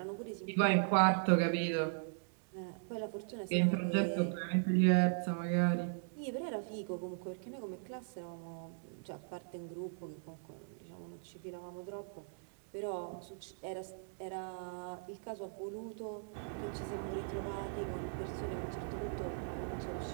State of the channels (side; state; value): left; silent; digital silence